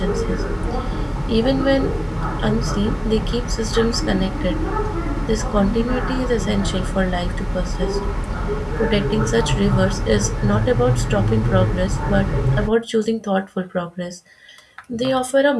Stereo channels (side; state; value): both; identical; correlation 1.00